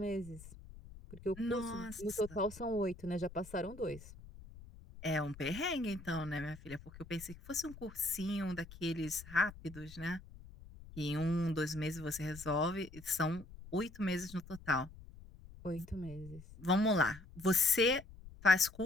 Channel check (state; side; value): noise; left; rumble, 17 dB below the sound